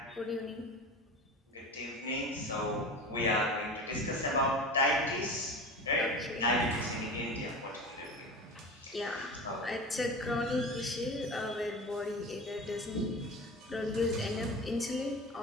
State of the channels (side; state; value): both; normal; correlation 0.32